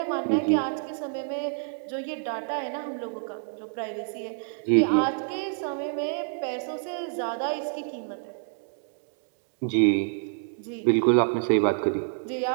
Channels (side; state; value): left; silent; digital silence